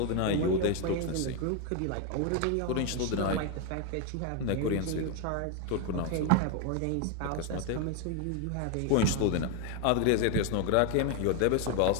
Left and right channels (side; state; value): both; different; correlation 0.01